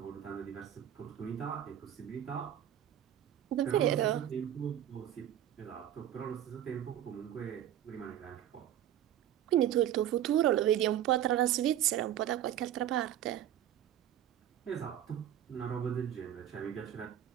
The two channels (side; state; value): left; quieter; 11.4 dB